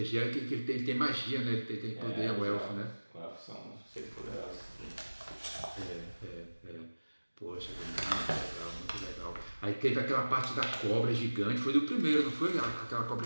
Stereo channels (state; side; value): inverted; both; correlation -1.00